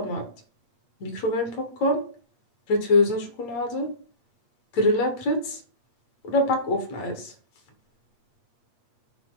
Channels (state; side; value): late; right; 8.5 ms